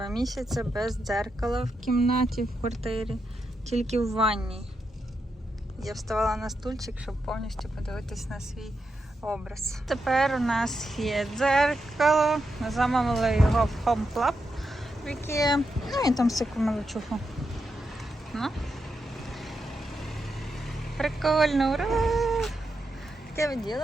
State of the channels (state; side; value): normal; both; correlation 0.85